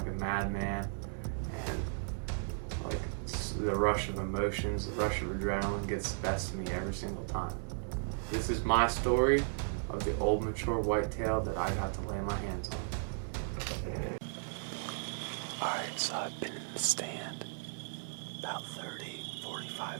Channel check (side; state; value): left; silent; digital silence